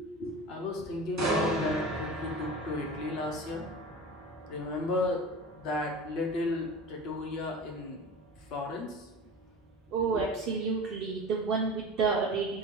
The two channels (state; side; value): normal; both; correlation 0.33